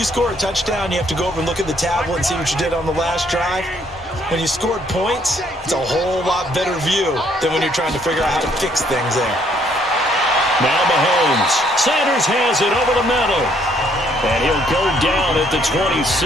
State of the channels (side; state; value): both; normal; correlation 0.67